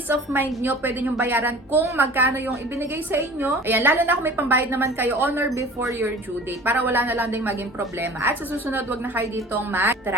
of mind nyo, pwede nyo bayaran kung magkano yung ibinigay sa inyo. Ayan, lalo na kung may pambayad naman kayo on or before your due date, para wala na lang ding maging problema. At sa susunod, wag na kayo ditong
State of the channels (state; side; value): normal; both; correlation 0.43